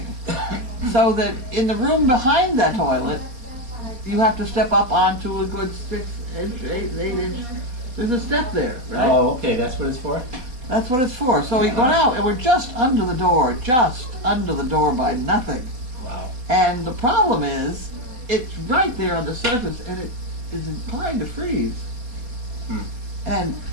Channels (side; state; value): left; late; 4.2 ms